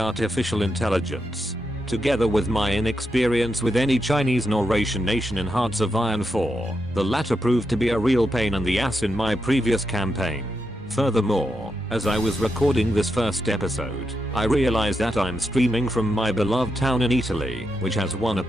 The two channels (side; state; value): both; normal; correlation 0.84